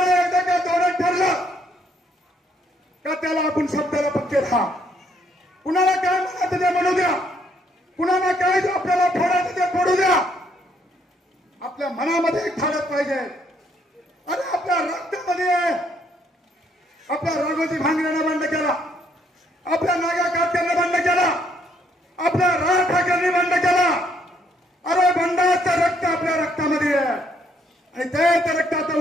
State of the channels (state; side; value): normal; both; correlation 0.70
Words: एकदा का धोरण ठरलं का त्याला आपण शब्दाला पक्के राहा. कुणाला काय म्हणायचं ते म्हणू द्या, कुणाला काय आपल्याला फोडायचं ते फोडू द्या. आपल्या मनामध्ये एक ठाडत पाहिजे. अरे आपल्या रक्तामध्ये आहे. आपल्या राघोजी भांगऱ्यानं बंड केला, आपल्या नागा काटकरनं बंड केला, आपल्या राज ठाकरेंनी बंड केला. अरे बंडाचं रक्त आपल्या रक्तामध्ये आहे आणि तेच रक्त आता